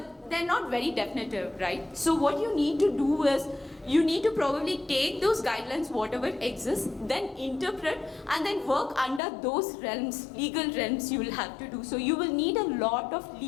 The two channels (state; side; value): drops out; right; at 9.2 s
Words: they're not very definitive, right? So what you need to do is, you need to probably take those guidelines, whatever exists, then interpret and then work under those realms, legal realms you will have to do. So you will need a lot of